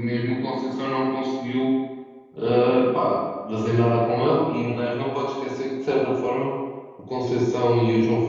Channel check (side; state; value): both; identical; correlation 1.00